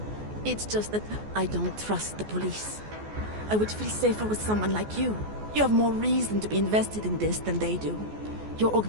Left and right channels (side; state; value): left; late; 14 ms